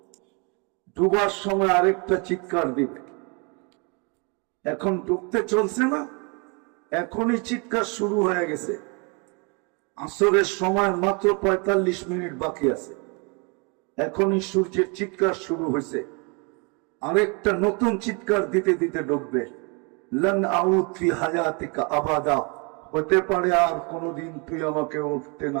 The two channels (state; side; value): quieter; left; 32.9 dB